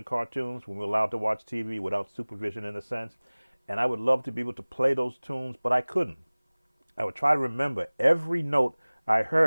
cartoons when we were allowed to watch TV without supervision in a sense. And I would love to be able to play those tunes, but I couldn't. I would try to remember every note I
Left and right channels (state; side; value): inverted; both; correlation -1.00